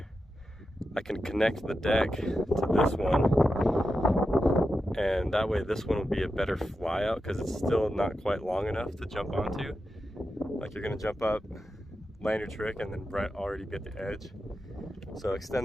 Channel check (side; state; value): both; normal; correlation 0.90